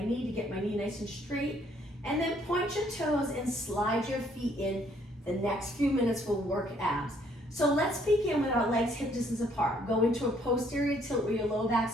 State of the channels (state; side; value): normal; both; correlation 0.65